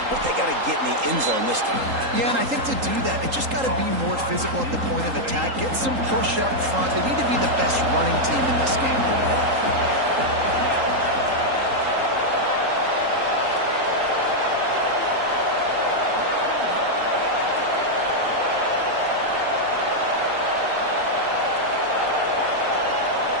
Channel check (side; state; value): left; late; 3.8 ms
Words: but they got to get in the end zone this time. Yeah, and I think to do that, they just got to be more physical at the point of attack, get some push up front. They need to be the best running team in this game today.